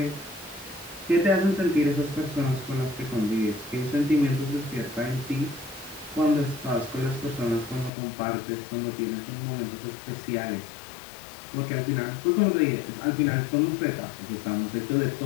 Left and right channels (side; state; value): right; drops out; at 7.9 s